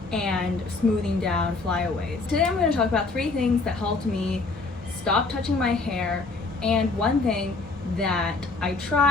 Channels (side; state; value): right; quieter; 3.7 dB